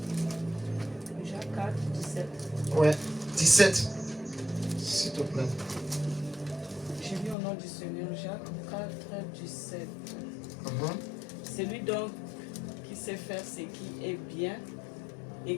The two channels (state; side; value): drops out; right; at 7.4 s